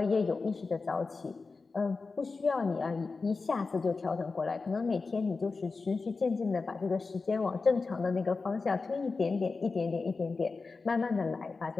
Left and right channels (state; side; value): quieter; right; 4.2 dB